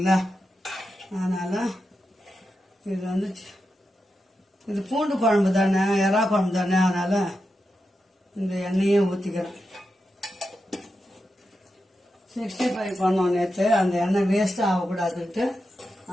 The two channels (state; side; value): normal; both; correlation 0.88